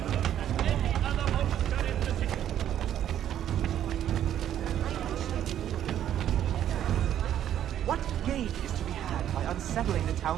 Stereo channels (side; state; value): left; quieter; 10.8 dB